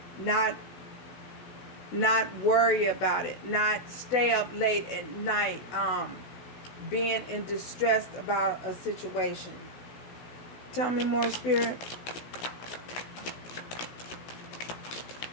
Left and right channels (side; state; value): right; late; 16 ms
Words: Not worry about it. Not stay up late at night being in distress about a situation. Tell me more, Spirit.